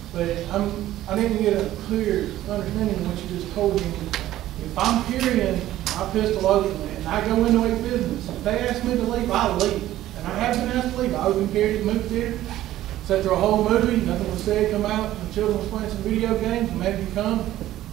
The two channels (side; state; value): left; quieter; 14.1 dB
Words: But I need to get a clear understanding of what you just told me. If I'm carrying my pistol openly and I go into a business, if they ask me to leave, I'll leave. And I have been asked to leave. I open carried it, moved theater, sat through a whole movie, nothing was said, come out, the children was playing some video games, and maybe you come